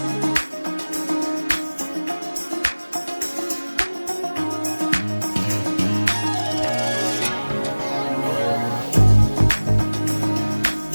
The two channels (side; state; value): both; inverted; correlation -1.00